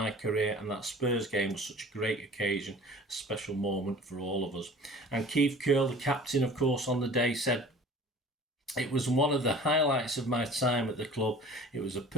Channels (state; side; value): normal; both; correlation 0.44